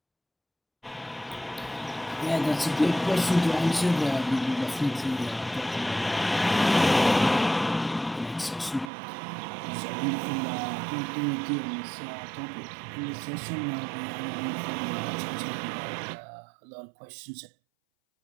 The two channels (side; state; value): left; drops out; at 8.9 s